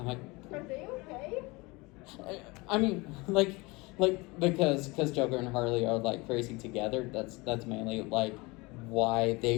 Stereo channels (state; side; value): quieter; right; 24.5 dB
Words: they okay? I mean, like because Joker and Harley are like crazy together. That's mainly like why